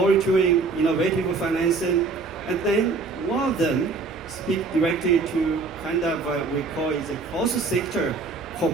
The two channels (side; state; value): left; quieter; 4.1 dB